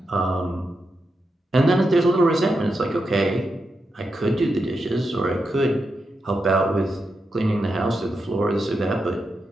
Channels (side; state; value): both; normal; correlation 0.86